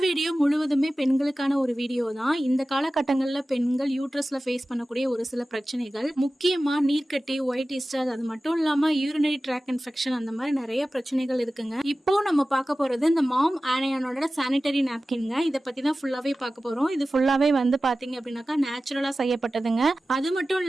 வீடியோ முழுவதுமே பெண்களுக்கான ஒரு வீடியோ தான். இந்த காலகட்டங்களில் பெண்கள் யூட்ரஸ்ல ஃபேஸ் பண்ணக்கூடிய ஒரு சில பிரச்சனைகள், முக்கியமா நீர்க்கட்டி, ஒயிட் டிஸ்சார்ஜ், அது மட்டும் இல்லாம யூரினரி ட்ராக் இன்ஃபெக்ஷன், அந்த மாதிரி நிறைய பிரச்சனைகள் இருக்குங்க. இப்போ நம்ம பார்க்க போறது இந்த மாம் ஆனையானோட சானிட்டரி நாப்கின்ங்க. இதை பத்தி தான் ஃபுல்லாவே பார்க்க போறோம். இது ஃபுல்லாவே வந்து பாத்தீங்க அப்படின்னாக்கா நேச்சுரலா செய்யப்பட்டதுங்க. அது மட்டும்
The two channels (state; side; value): normal; both; correlation 0.96